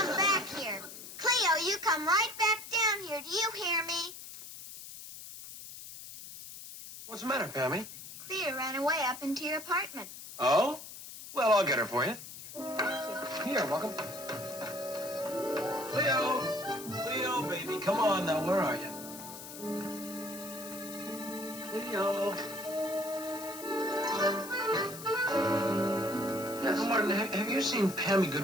back here. Cleo, you come right back down here. Do you hear me? What's the matter, Pammy? Cleo ran away up into your apartment. Oh? Well, I'll get her for you. Here, welcome. Cleo! Cleo, baby, come on now. Where are you? Cleo. Now, Martin, have you seen Pammy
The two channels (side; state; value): left; noise; hiss, 12 dB below the sound